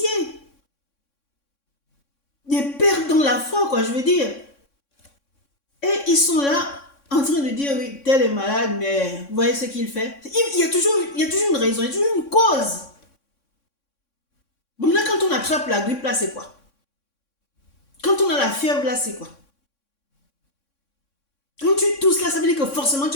des pères dans la foi, quoi, je veux dire. Et ils sont là en train de dire, oui, tel est malade, mais vous voyez ce qu'il fait. Il y a toujours une raison, il y a toujours une cause. Bon, là, quand on attrape la grippe, là, c'est quoi? Quand on a la fièvre, là, c'est quoi? Quand tu tousses, là, ça veut dire que forcément, tu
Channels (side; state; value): right; late; 3.6 ms